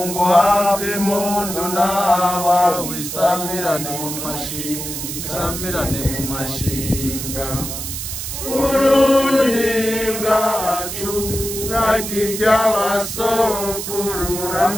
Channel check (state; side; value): noise; right; hiss, 6 dB below the sound